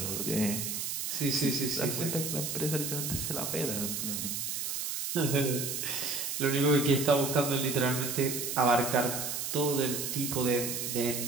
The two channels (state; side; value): noise; right; hiss, 3 dB below the sound